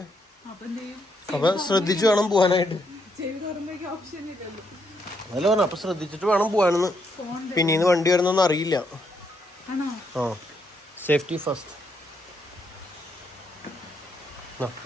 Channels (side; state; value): both; normal; correlation 0.76